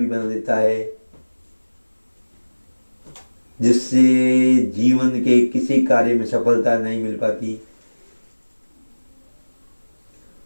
बना देता है, जिससे जीवन के किसी कार्य में सफलता नहीं मिल पाती।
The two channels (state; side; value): inverted; both; correlation -1.00